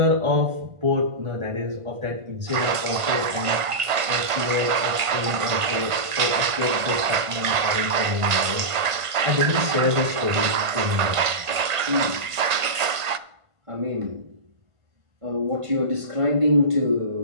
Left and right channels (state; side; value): late; left; 1.5 ms